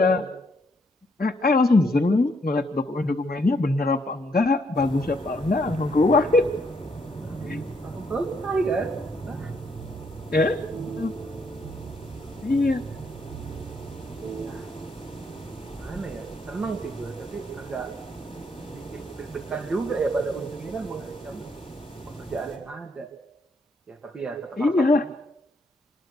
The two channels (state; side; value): normal; both; correlation 0.72